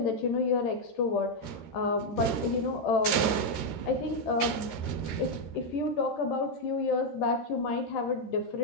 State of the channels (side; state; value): right; late; 13 ms